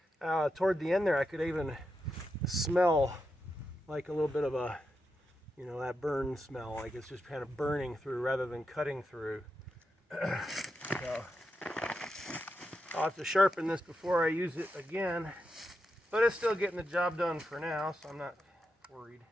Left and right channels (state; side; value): normal; both; correlation 0.87